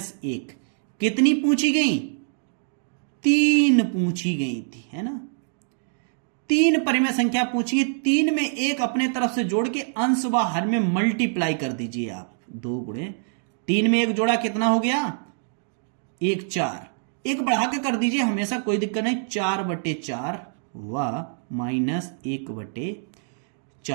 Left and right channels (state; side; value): silent; left; 62 dB below the other